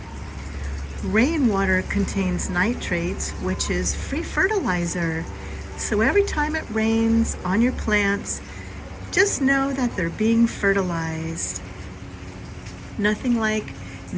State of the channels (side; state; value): both; identical; correlation 1.00